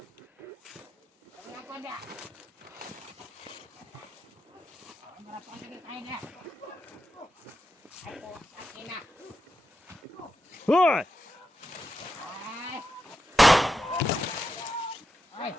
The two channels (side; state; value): both; normal; correlation 0.88